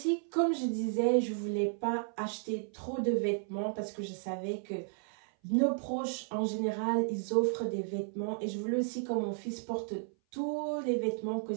comme je disais, je voulais pas acheter trop de vêtements parce que je savais que nos proches, en général, ils offrent des vêtements. Et je voulais aussi que mon fils porte tous les vêtements que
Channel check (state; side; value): silent; left; 55 dB below the other